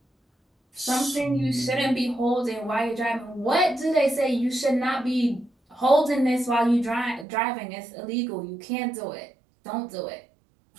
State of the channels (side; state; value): left; drops out; at 7.2 s